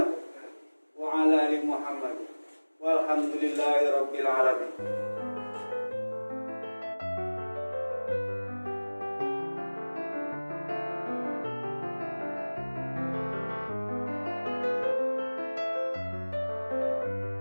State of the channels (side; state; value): both; inverted; correlation -1.00